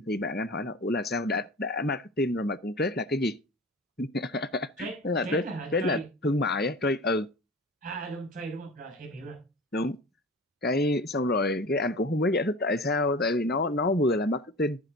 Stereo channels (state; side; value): normal; both; correlation 0.36